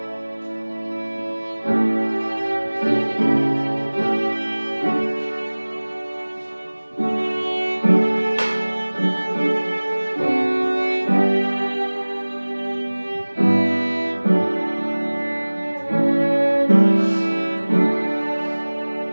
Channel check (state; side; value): inverted; both; correlation -1.00